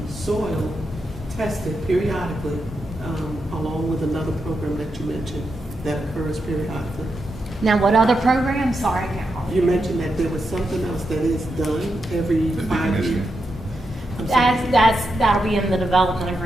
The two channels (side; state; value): both; normal; correlation 0.85